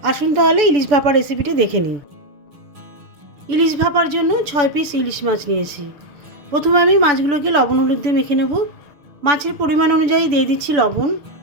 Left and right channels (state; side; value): late; left; 6.9 ms